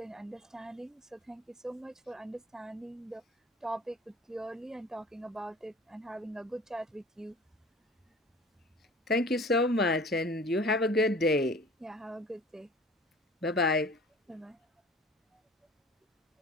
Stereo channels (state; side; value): normal; both; correlation 0.45